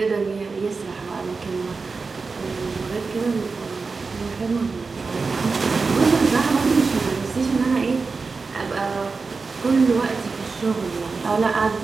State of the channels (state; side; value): quieter; left; 4.4 dB